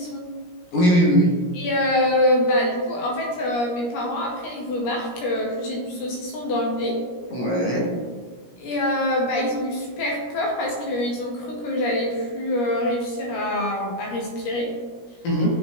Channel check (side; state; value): right; late; 17 ms